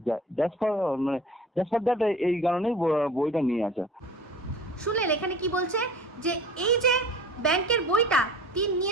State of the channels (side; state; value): both; normal; correlation 0.42